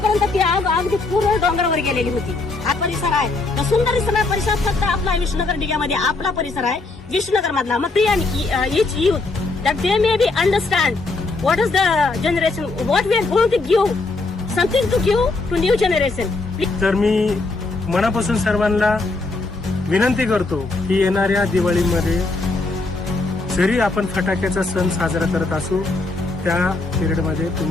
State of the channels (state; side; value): quieter; right; 3.4 dB